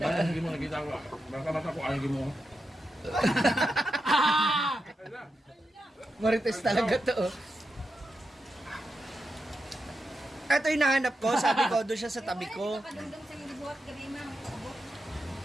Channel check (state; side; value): normal; both; correlation 0.88